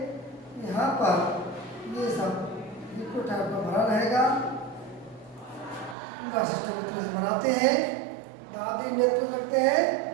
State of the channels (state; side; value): drops out; left; at 6.0 s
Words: यहाँ पर ये सब लिक्विड टाइप का भरा रहेगा। पूरा सिस्टम इस तरह से बनाते हैं। दाबी नेत्र रखते हैं,